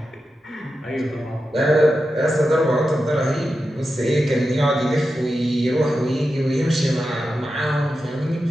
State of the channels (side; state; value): both; normal; correlation 0.90